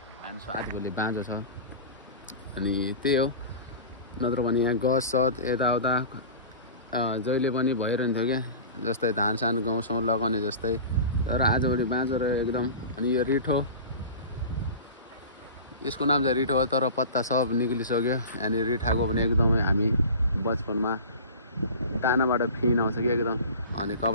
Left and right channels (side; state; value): both; inverted; correlation -0.35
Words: एन्ड सो आजभोलि बाँझो छ अनि त्यही हो नत्र भने यहाँ गस सत यताउता जहिले पनि भइरहन्थ्यो क्या जस्तै धान सान गाउँसँग लगाउने जस्तै तर आजभोलि बाँझो रह्यो एकदम अनि यो रिठो यसको नाम चाहिँ रिठो हो तर पत्ता सब निक्लिसक्यो अनि रिठाको पनि एकदमै हामी बचपनमा दानाबाट फिन आउँछ कि एकदम अनि